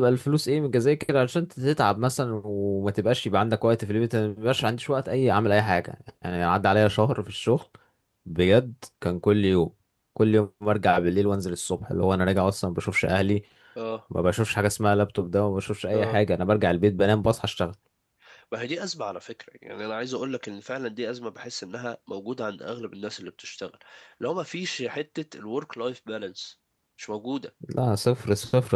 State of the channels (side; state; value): both; identical; correlation 1.00